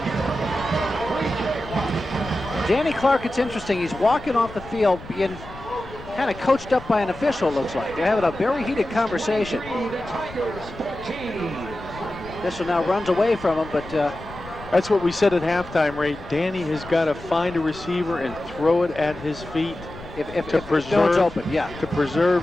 Danny Clark, it's interesting. He's walking off the field being kind of coached up by an official, looks like. They're having a very heated conversation. Official now runs away from him, but... That's what we said at halftime, Ray. Danny has got to find a receiver and throw it at his feet. If no one's open, to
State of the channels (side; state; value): left; noise; rumble, 16 dB below the sound